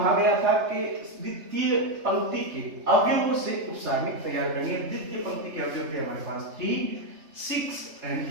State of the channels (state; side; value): late; left; 3.3 ms